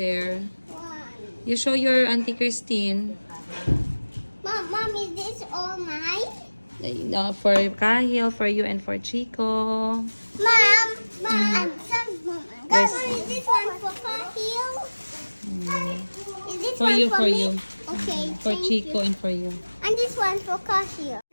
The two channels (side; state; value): both; inverted; correlation -1.00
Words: You show your auntie Christine. Mom, is this all mine? For Kahil, for you, and for Chico. Mom, I'm sorry, Mom. Yes. Is this one for Kahil? Is this For one you, for for me? you. Okay, For thank Chico you. and for you. And this one for Kahil.